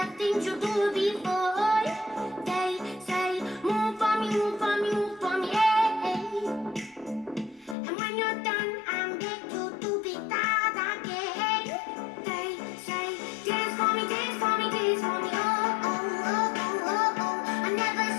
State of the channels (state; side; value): drops out; right; at 7.8 s